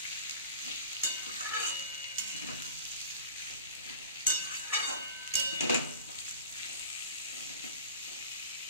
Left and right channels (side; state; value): both; inverted; correlation -0.38